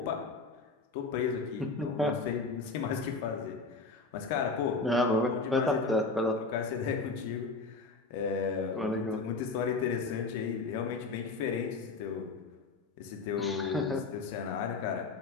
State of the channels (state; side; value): quieter; right; 3.8 dB